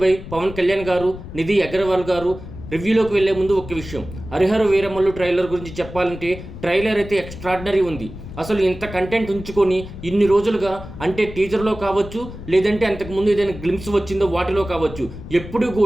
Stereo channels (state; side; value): noise; left; rumble, 12 dB below the sound